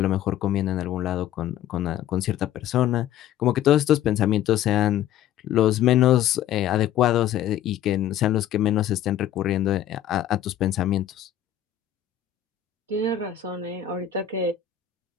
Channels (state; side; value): quieter; right; 11.1 dB